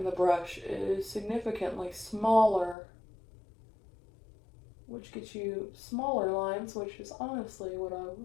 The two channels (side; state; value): right; drops out; at 2.8 s